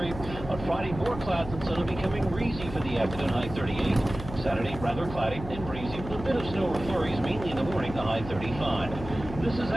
On Friday, more clouds and sun will becoming breezy for the afternoon, high 38. Saturday, rather cloudy and breezy with a bit of snow or flurries, mainly in the morning, the high 35. This is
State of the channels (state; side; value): noise; left; hum, 11 dB below the sound